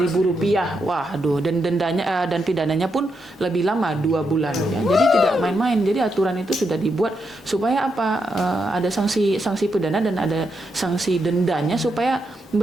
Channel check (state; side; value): normal; both; correlation 0.82